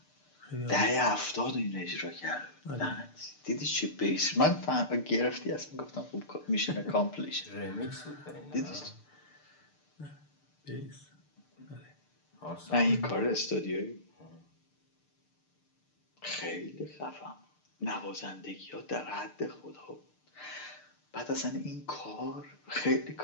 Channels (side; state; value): right; late; 6.7 ms